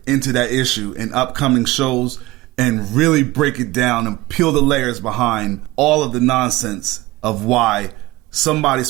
into that issue in upcoming shows and really break it down and peel the layers behind all of the nonsense of why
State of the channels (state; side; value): quieter; left; 19.4 dB